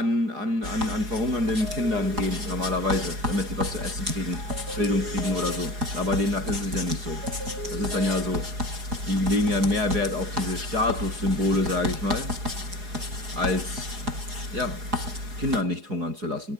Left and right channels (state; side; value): late; left; 4.8 ms